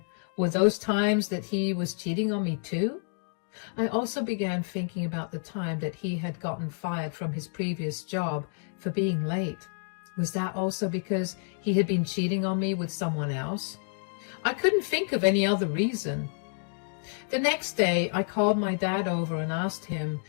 were those times that he was cheating on me too? I also began thinking about the time that he had gotten fired from his previous job for being late. Was that also because he had been cheating on me with someone else? I couldn't think of any other reason. The next day, I called my dad over and asked him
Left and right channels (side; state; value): right; silent; 59 dB below the other